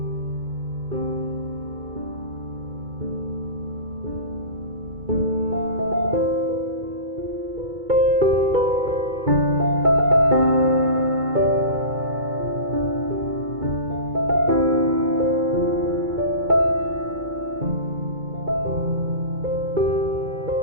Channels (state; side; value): late; left; 2.3 ms